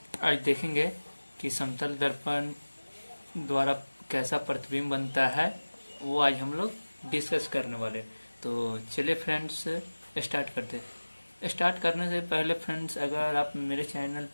आज देखेंगे कि समतल दर्पण द्वारा कैसा प्रतिबिंब बनता है। वो आज हम लोग डिस्कस करने वाले। तो चलिए फ्रेंड्स, स्टार्ट करते हैं। स्टार्ट करने से पहले फ्रेंड्स, अगर आप मेरे चैनल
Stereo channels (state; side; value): inverted; both; correlation -1.00